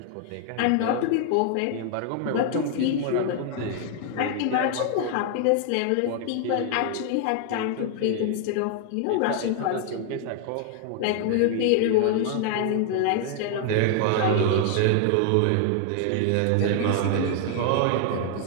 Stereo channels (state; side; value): different; both; correlation 0.00